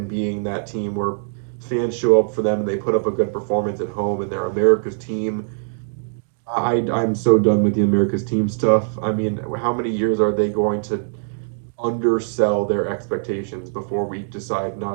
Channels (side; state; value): left; silent; digital silence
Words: being that team where fans show up for them and they put up a good performance at home and they're America's team. I'm so done with the America's team stuff. I mean, how many years are they going to undersell their expectations before we decide